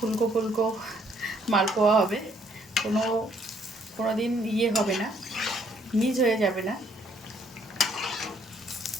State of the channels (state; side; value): normal; both; correlation 0.66